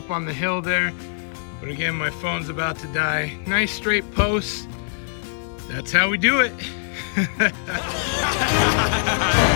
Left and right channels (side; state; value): right; silent; 64 dB below the other